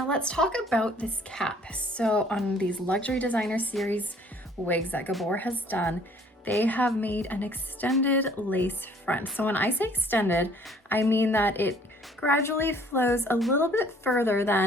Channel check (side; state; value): both; normal; correlation 0.58